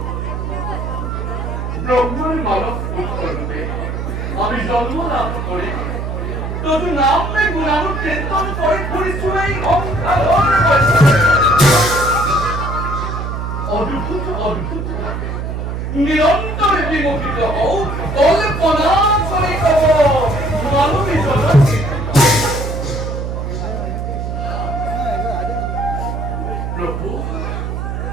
ব্রহ্মার মানব পুত্ররূপে আমি জন্ম লাভ করি তদু নাম মে গুণানু কীর্তন করে ঘুরি শুনাই অঙ্কার অদ্ভুত অদ্ভুত নিরন্তরে বিমোহিত হও কল্পনা করে কব মানবী জগৎ প্রভু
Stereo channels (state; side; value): noise; right; hum, 4 dB below the sound